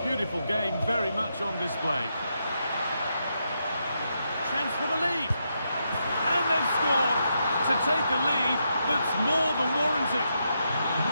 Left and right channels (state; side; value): inverted; both; correlation -0.82